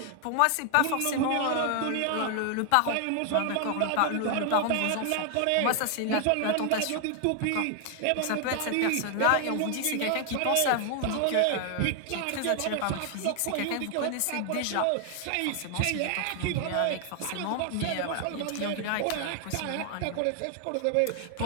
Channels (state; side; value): different; both; correlation 0.00